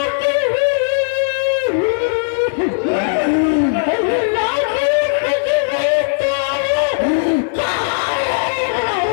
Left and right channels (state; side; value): silent; right; digital silence